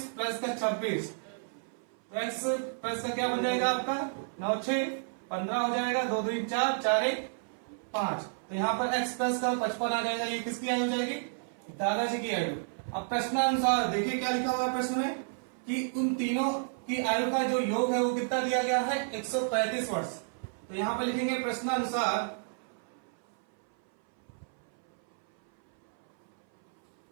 प्लस का 26 तो x प्लस का क्या बन जाएगा आपका 9 6 15 हो जाएगा, 2 2 4 4 1 5। तो यहाँ पर x प्लस का 55 आ जाएगा। ये किसकी आयु हो जाएगी, दादाजी की आयु। अब प्रश्नानुसार देखिए क्या लिखा हुआ है प्रश्न में कि उन तीनों की आयु का जो योग है वो कितना दिया गया है, 135 वर्ष। तो यहाँ पर लिखेंगे प्रश्नानुसार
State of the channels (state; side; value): silent; left; 57 dB below the other